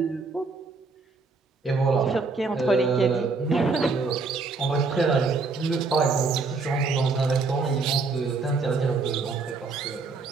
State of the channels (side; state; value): left; quieter; 4.2 dB